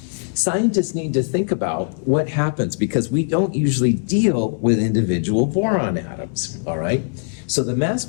scientists need to think about what happens because we don't usually deal with individual boron atoms, all right? So the mass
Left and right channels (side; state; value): right; silent; digital silence